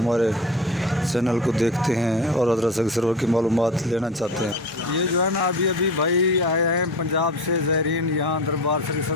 چینل کو دیکھتے ہیں اور حضرت سرور کی معلومات لینا چاہتے ہیں۔ یہ جو ہے نا ابھی بھائی آئے ہیں پنجاب سے، زائرین یہاں دربار شریف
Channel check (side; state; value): both; normal; correlation 0.31